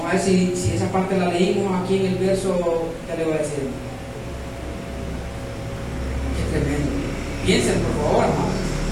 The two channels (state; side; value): identical; both; correlation 1.00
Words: a ver si esa parte la leímos aquí en el verso que le voy a decir. Qué tremendo. Piensen, por favor, hermano.